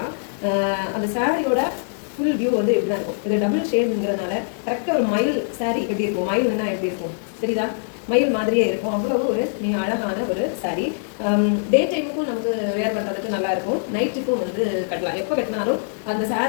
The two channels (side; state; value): right; silent; digital silence